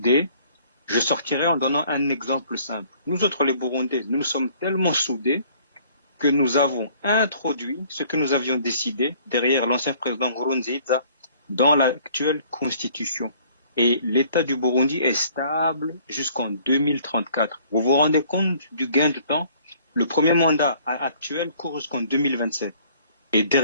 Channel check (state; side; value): inverted; both; correlation -0.57